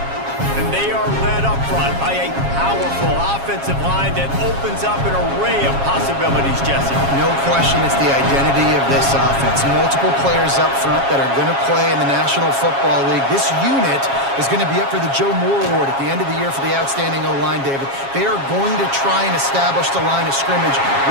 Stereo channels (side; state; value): left; late; 7.3 ms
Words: And they are led up front by a powerful offensive line that opens up an array of possibilities, Jesse. No question it's the identity of this offense. Multiple players up front that are going to play in the National Football League. This unit is going to be up for the Joe Moore Award at the end of the year for the outstanding O-line, David. They are going to try and establish the line of scrimmage